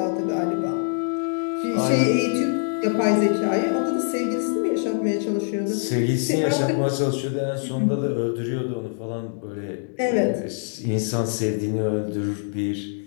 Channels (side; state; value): right; silent; digital silence